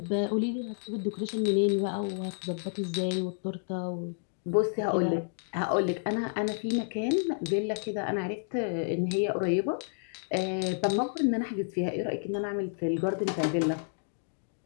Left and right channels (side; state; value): right; silent; digital silence